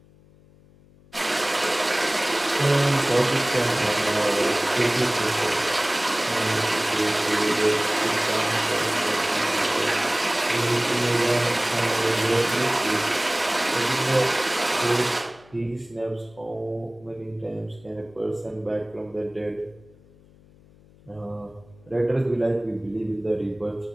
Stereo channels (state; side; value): noise; left; hum, 27 dB below the sound